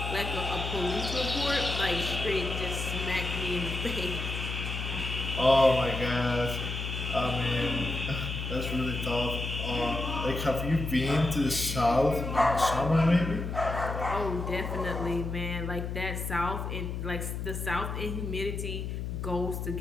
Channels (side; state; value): left; noise; hum, 4 dB below the sound